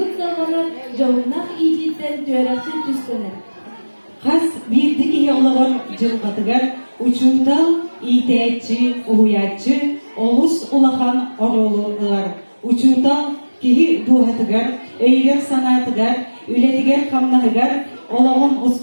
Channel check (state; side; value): inverted; both; correlation -1.00